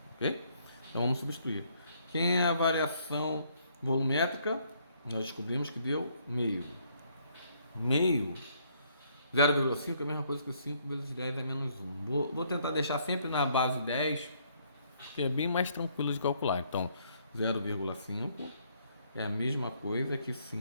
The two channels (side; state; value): both; inverted; correlation -0.68